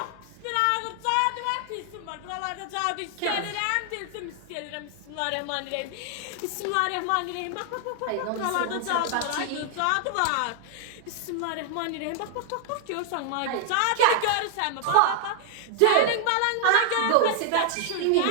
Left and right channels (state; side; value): different; both; correlation 0.00